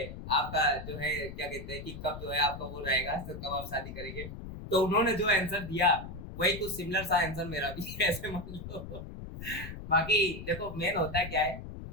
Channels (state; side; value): noise; left; rumble, 10 dB below the sound